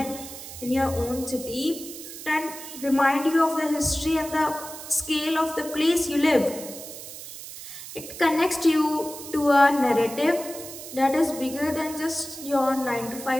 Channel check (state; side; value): noise; right; hiss, 12 dB below the sound